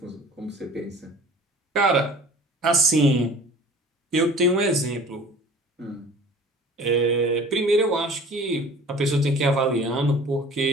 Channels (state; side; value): normal; both; correlation 0.46